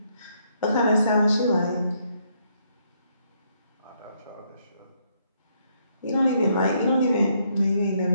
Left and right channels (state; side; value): inverted; both; correlation -0.73